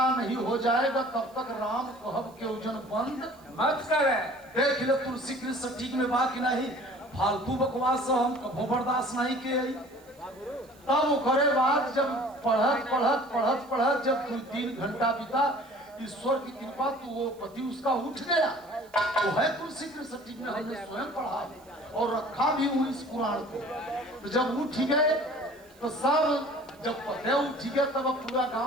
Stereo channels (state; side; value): noise; right; hiss, 28 dB below the sound